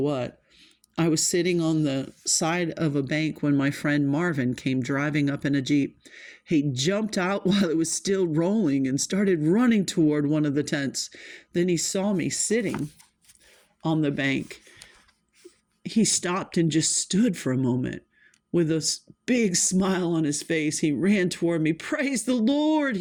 I was sitting on the side of a bank when my friend Marvin came driving up in a Jeep. He jumped out while it was still rolling and started running toward one of the tents. Then he saw me sitting on the bank. He stopped and just stood for a moment. With a big smile on his face, he ran toward me. "Praise the Lord,"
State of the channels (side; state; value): both; identical; correlation 1.00